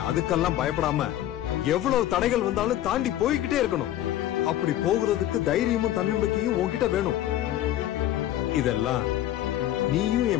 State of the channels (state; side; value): quieter; right; 13.0 dB